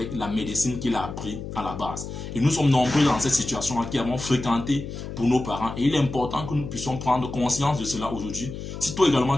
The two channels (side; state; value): left; noise; hum, 8 dB below the sound